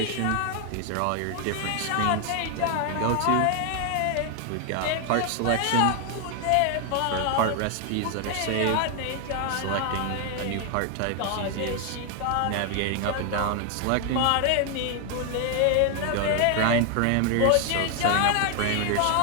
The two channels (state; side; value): different; both; correlation 0.01